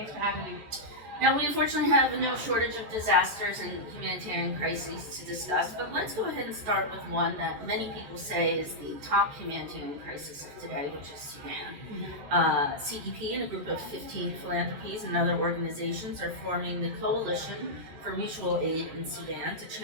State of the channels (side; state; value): left; late; 14 ms